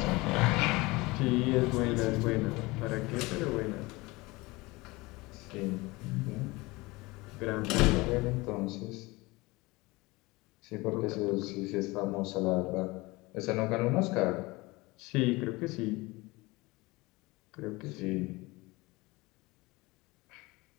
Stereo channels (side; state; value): right; quieter; 22.7 dB